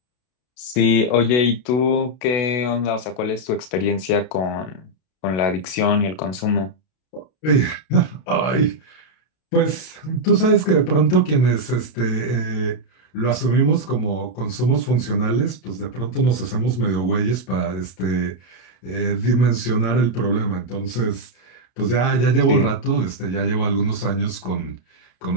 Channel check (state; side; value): late; right; 32 ms